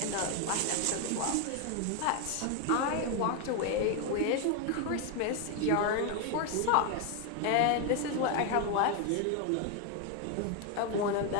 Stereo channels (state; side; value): different; both; correlation 0.01